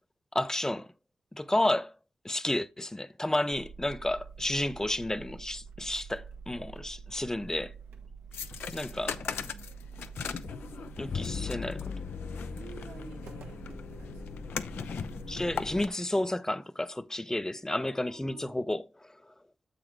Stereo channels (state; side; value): normal; both; correlation 0.91